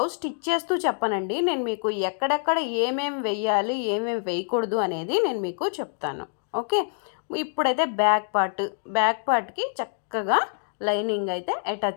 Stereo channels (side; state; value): right; silent; digital silence